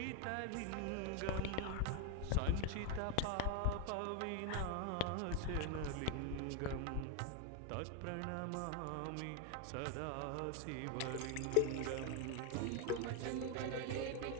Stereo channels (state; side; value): different; both; correlation 0.01